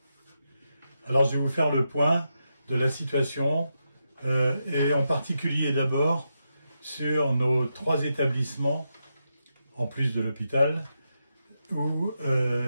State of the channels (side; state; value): both; inverted; correlation -0.85